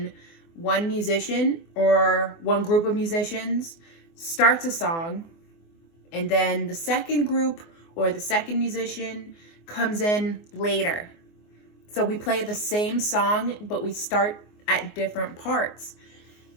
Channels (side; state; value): right; late; 24 ms